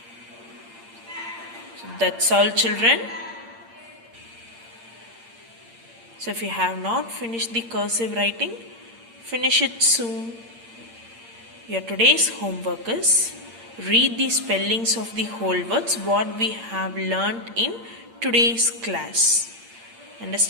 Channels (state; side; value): late; left; 8.7 ms